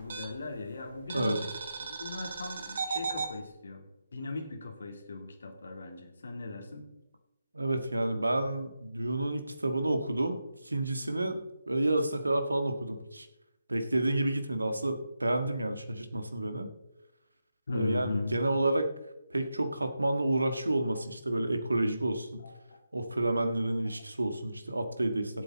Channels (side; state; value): both; inverted; correlation -0.88